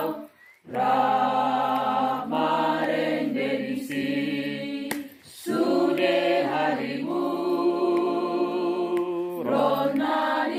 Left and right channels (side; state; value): both; identical; correlation 1.00